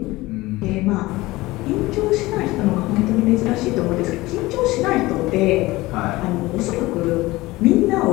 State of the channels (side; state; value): right; quieter; 19.6 dB